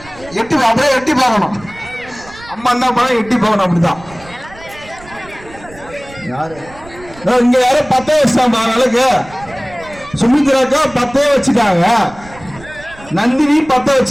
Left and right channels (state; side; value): noise; right; rumble, 20 dB below the sound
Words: எட்டி அப்படியே எட்டி பார்க்கணும். அம்மா என்ன பண்ண எட்டி பார்க்கணும். அப்படிதான் இங்க யாரும் 10 வச்சுட்டாங்க விளக்கு. சுமித்ராக்கா 10 வச்சுட்டாங்க. நந்தினி 10